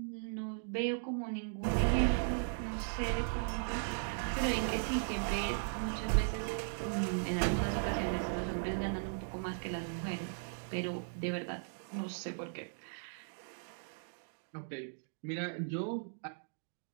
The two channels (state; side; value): silent; left; digital silence